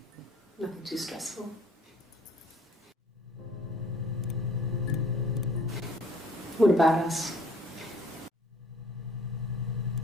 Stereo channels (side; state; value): both; normal; correlation 0.56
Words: nothing too stressful. What about us?